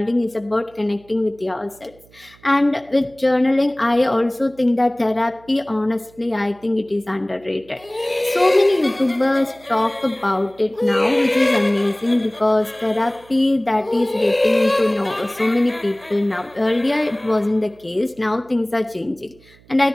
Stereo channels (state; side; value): noise; right; hum, 28 dB below the sound